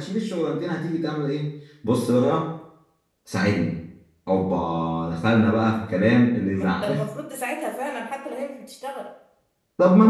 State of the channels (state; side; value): identical; both; correlation 1.00